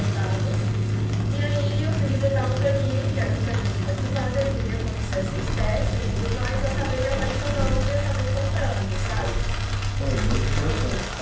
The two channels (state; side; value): identical; both; correlation 1.00